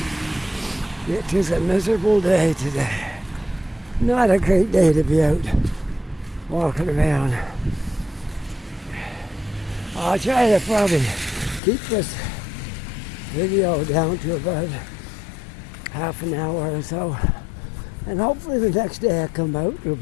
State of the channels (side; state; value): right; drops out; at 11.6 s